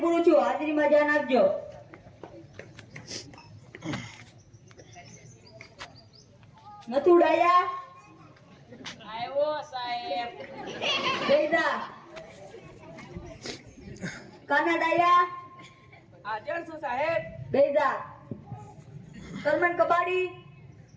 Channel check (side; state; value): both; identical; correlation 1.00